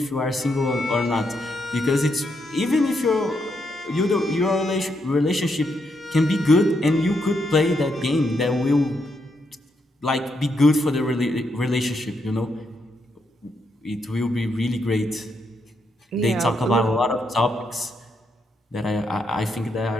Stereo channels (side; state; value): both; normal; correlation 0.79